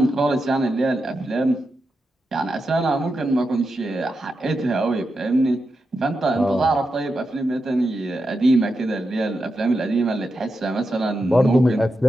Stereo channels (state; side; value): normal; both; correlation 0.88